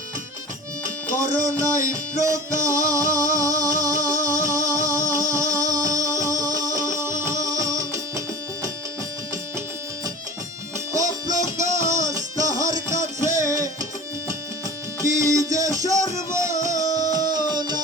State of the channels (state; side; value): normal; both; correlation 0.37